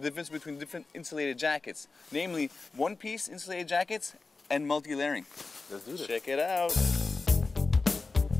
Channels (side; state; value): right; quieter; 3.9 dB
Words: difference between different insulated jackets, namely one-piece insulated jackets and multi-layering. Let's do this. Check it out.